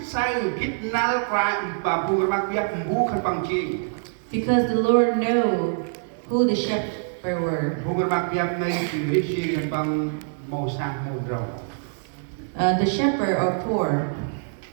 sai kit nal prime ba bukan makiat bu kan bang ching. Because the Lord know who the shepherd were. Bukan makiat nei ching ri ching kan bang mau sang mau rau. The shepherd are poor.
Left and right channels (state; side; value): silent; left; digital silence